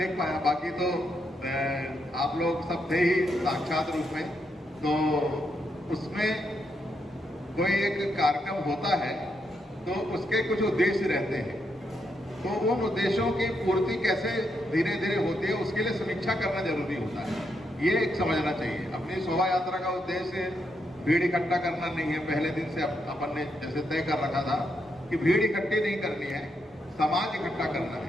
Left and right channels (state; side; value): normal; both; correlation 0.80